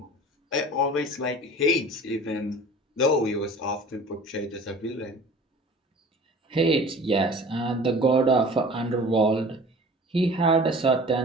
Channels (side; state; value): both; normal; correlation 0.43